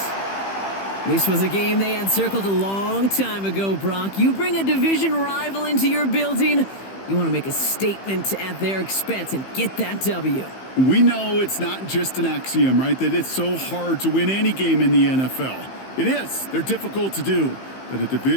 This was a game they had circled a long time ago, Brock. You bring a division rival into your building, you want to make a statement at their expense and get that W. We know it's not just an axiom, right, that it's so hard to win any game in the NFL. It is. They're difficult to do. But a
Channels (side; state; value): right; late; 15 ms